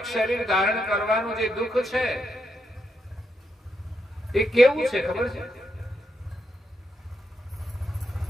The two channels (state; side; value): normal; both; correlation 0.81